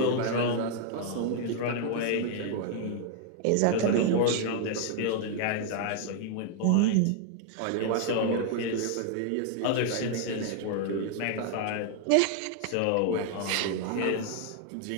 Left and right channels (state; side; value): different; both; correlation 0.00